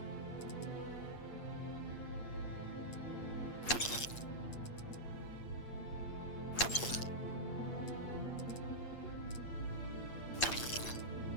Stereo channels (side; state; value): right; late; 8.5 ms